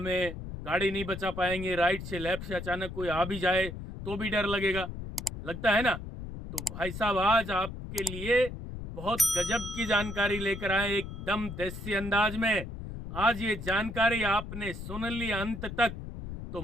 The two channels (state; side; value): noise; left; rumble, 9 dB below the sound